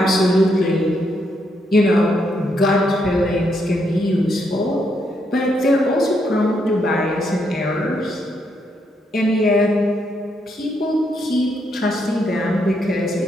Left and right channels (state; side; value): normal; both; correlation 0.77